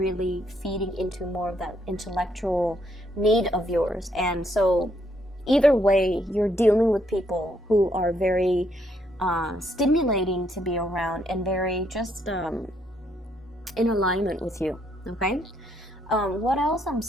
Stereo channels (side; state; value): both; normal; correlation 0.72